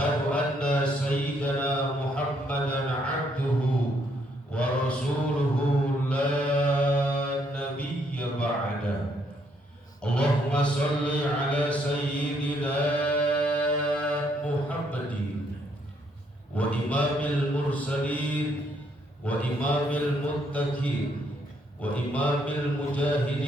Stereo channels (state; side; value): normal; both; correlation 0.71